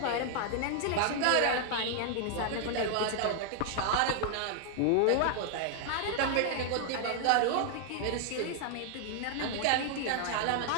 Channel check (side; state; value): both; different; correlation 0.00